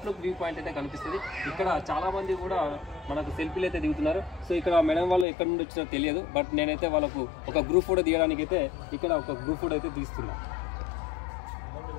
వ్యూ పాయింట్ అయితే కనిపిస్తుంది. ఇక్కడ చాలా మంది కూడా మనకు సెల్ఫీలు అయితే దిగుతున్నారు. సో ఇక్కడ మేడం వాళ్ళు ఎక్కడి నుండి వచ్చినా తెలియదు. బట్ నేనైతే వాళ్ళకు ఒక గ్రూప్ ఫోటో తీయడానికి అయితే ఇక్కడ ఒక గ్రూప్ ఫోటో అయితే తీస్తున్నా.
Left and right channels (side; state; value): right; drops out; at 5.2 s